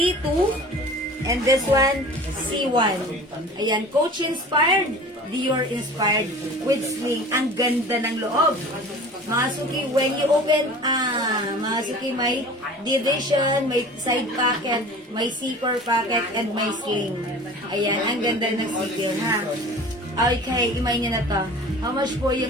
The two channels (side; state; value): both; normal; correlation 0.41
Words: And this one, C1. Ayan, Coach inspired, Dior inspired with sling. Ang ganda ng loob. Mga suki, when you open, mga suki, may division, may side pocket, may zipper pocket, and may sling. Ayan, ang ganda ng sipil, ha? Okay, imay niya na to. How much po